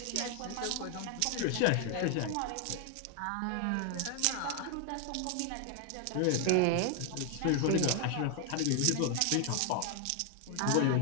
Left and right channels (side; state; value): both; different; correlation 0.00